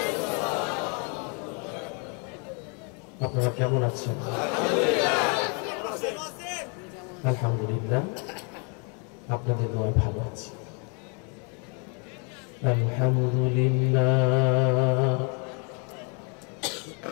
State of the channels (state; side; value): quieter; right; 36.1 dB